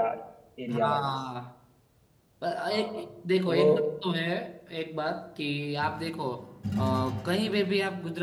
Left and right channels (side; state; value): both; identical; correlation 1.00